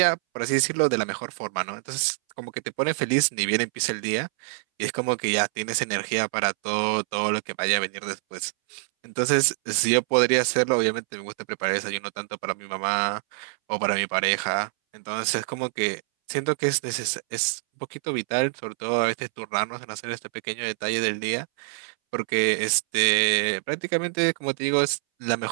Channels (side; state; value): left; silent; 61 dB below the other